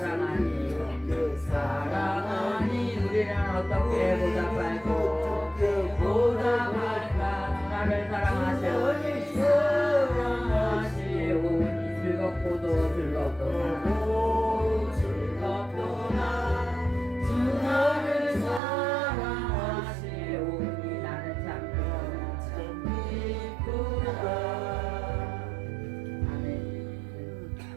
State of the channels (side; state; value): left; drops out; at 18.6 s